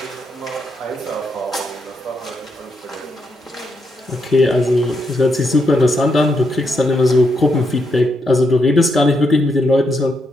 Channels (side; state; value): both; normal; correlation 0.80